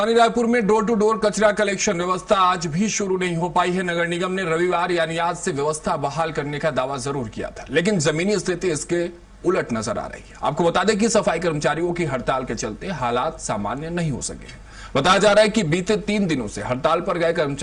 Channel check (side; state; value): both; identical; correlation 1.00